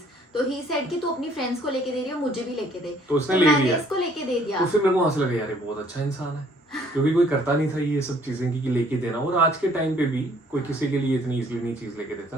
तो ही सेड कि तू अपनी फ्रेंड्स को लेके दे रही हो, मुझे भी लेके दे, तो उसने तो ले मैंने लिया। इसको लेके दे दिया। तो फिर मेरे को वहां से लगा यार ये बहुत अच्छा इंसान है, क्योंकि कोई करता नहीं था ये सब चीजें कि लेके देना। और आज के टाइम पे भी कोई किसी के लिए इतनी इजीली नहीं चीज लेके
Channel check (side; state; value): both; normal; correlation 0.61